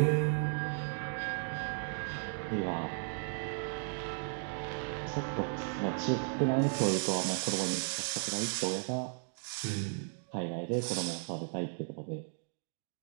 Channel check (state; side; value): silent; left; 54 dB below the other